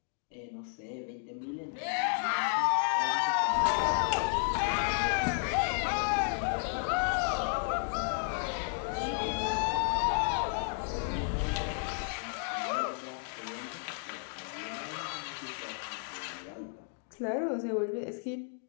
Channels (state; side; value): silent; right; 56 dB below the other